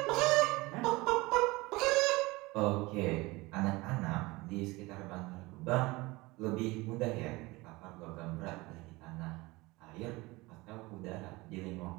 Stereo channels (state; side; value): quieter; left; 22.1 dB